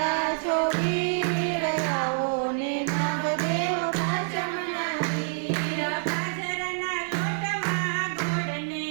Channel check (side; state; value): left; silent; 57 dB below the other